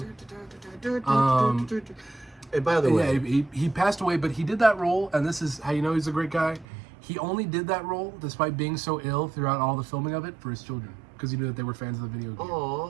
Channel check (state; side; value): drops out; left; at 6.7 s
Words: And by the way, he passed away, but he did that role, and this is how you know he's a great guy. He only did that role, despite being so ill throughout all the filming of it, for his children, because he knew that they were fans of the video game.